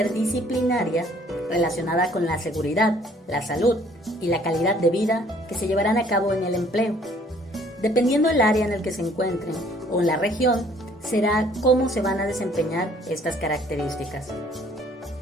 relacionada con la seguridad, la salud y la calidad de vida que se llevarán a cabo en el empleo. Dependiendo del área en el que se encuentren o en la región, será cómo se van a desempeñar estas características.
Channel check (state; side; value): normal; both; correlation 0.59